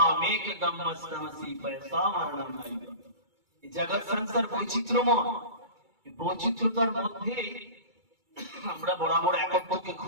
একদমস্তমসি পয়সা মরণম। এই জগৎ সংসার বৈচিত্র্যময়। এই বৈচিত্র্যতার মধ্যে আমরা বরাবর একত্বকে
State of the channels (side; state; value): left; late; 2.3 ms